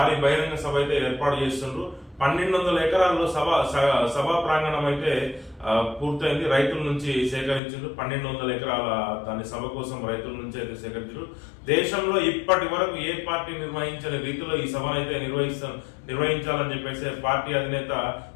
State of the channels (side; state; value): right; drops out; at 7.6 s